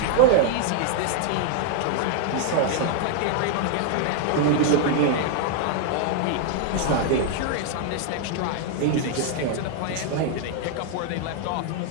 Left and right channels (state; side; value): different; both; correlation 0.00